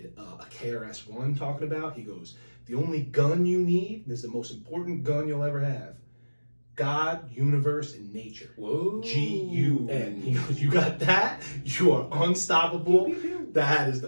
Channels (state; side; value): inverted; both; correlation -1.00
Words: a KRS-One talking about, he goes, the only gun you need, this is the most important gun you'll ever have, God, universe, and nature. Whoa. G-U-N. He goes, you got that? You are unstoppable. That is